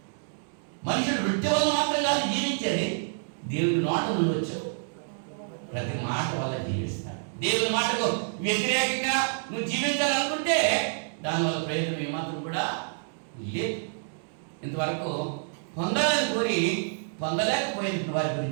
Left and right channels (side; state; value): left; silent; digital silence